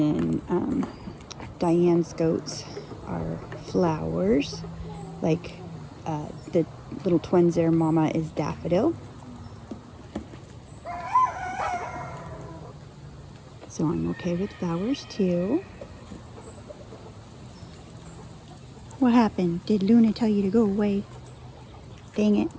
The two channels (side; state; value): both; identical; correlation 1.00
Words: Diane's goats are flowers, like the little twins there, Mama is Daffodil. So I'm okay with flowers too. What happened? Did Luna tell you to go away? Dang it.